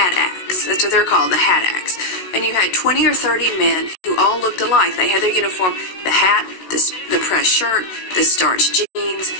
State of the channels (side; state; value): right; late; 16 ms